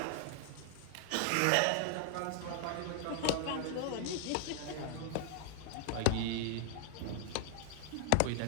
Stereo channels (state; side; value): different; both; correlation 0.00